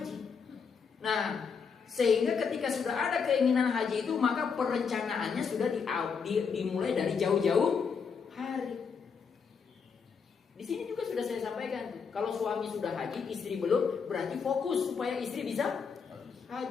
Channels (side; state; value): right; quieter; 5.9 dB